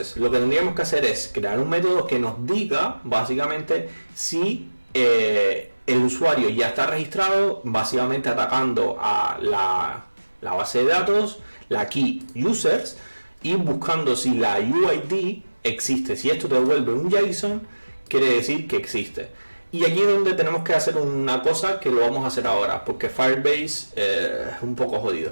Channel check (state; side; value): inverted; both; correlation -1.00